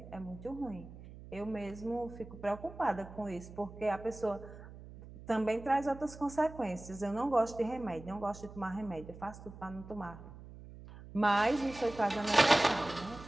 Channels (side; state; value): right; noise; hum, 16 dB below the sound